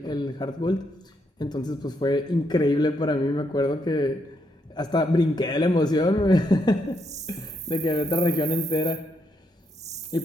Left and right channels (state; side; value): normal; both; correlation 0.76